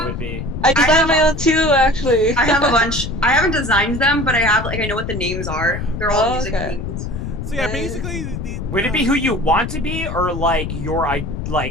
would be. I designed my own too, actually. I have a bunch. I haven't designed them, but I have I know what the names are. They're all music okay. themes. So yeah, basically the Would it be who you want to be, or like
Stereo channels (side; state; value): left; noise; rumble, 5 dB below the sound